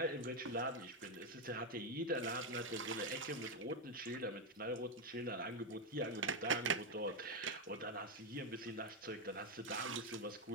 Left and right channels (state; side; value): normal; both; correlation 0.05